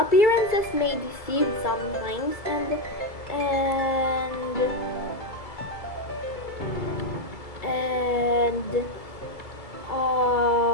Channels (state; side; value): late; right; 2.3 ms